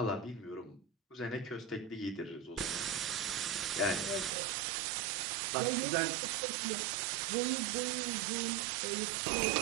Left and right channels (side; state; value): left; drops out; at 4.4 s